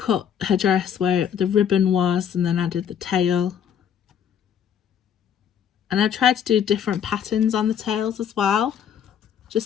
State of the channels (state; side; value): quieter; right; 8.7 dB